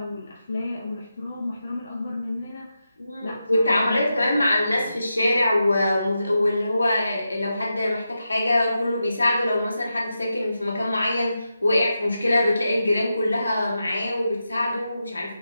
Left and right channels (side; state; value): both; inverted; correlation -0.88